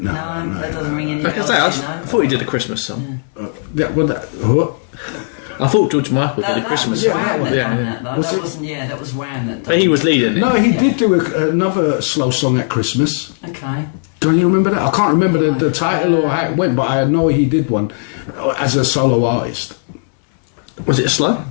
that doesn't ring any bells, you know? I thought he did a Christmas song. Yeah, well, what? I thought George Michael did a That Christmas was song. Wham that done Yeah. that, though. That wasn't, that was Wham that done But he was leading it. No, he Yeah. did do another slow song at Christmas. Okay. Don't you remember that? I can't remember the title or how it went, but I know he did one as a solo artist. Was it slow?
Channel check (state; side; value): silent; right; digital silence